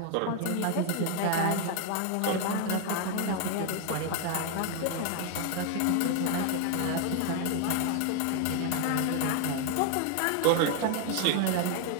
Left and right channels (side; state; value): both; different; correlation 0.00